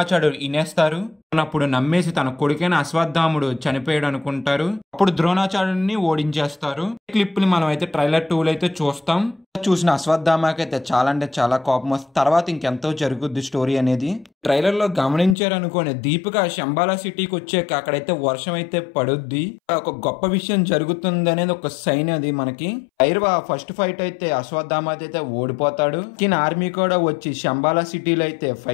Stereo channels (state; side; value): drops out; right; at 15.4 s